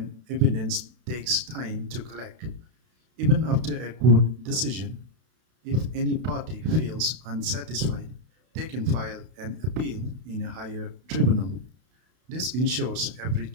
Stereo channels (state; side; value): late; left; 32 ms